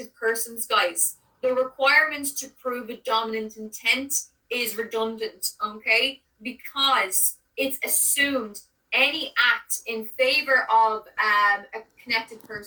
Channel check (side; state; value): both; identical; correlation 1.00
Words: persons, guys, the requirement to prove a dominant intent is redundant, okay? Because it's assumed any act in favor of a connected